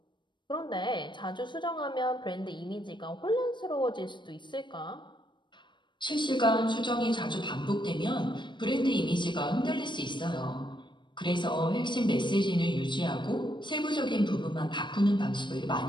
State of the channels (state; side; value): late; right; 0.22 ms